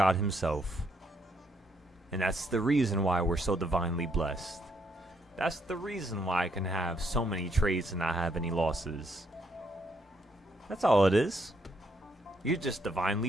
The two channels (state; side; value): normal; both; correlation 0.74